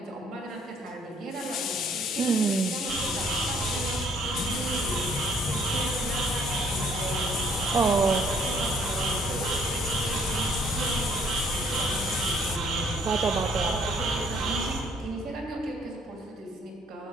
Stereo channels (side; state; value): both; normal; correlation 0.62